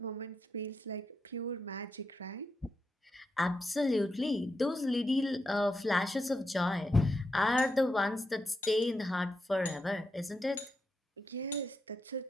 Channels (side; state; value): both; normal; correlation 0.85